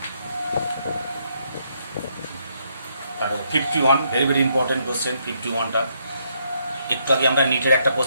51 very very important question 51টা। একটু আগে আমরা নিটের একটা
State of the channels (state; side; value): inverted; both; correlation -0.74